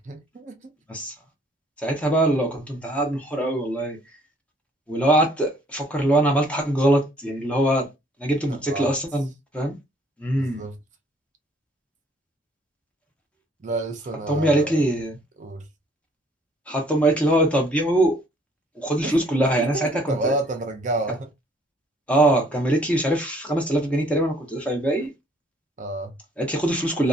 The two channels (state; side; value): normal; both; correlation 0.61